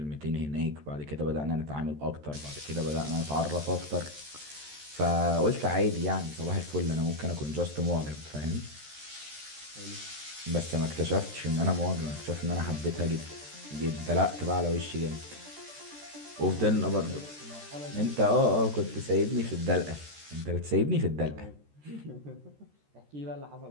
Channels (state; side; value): late; left; 13 ms